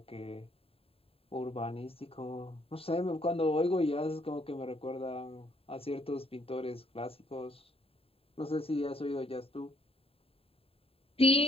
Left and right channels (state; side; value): late; right; 0.27 ms